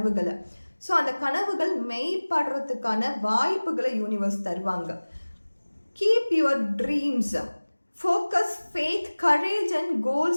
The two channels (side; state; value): both; inverted; correlation -1.00